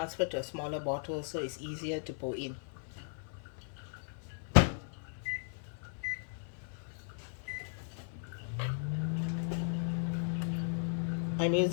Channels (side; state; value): right; silent; 53 dB below the other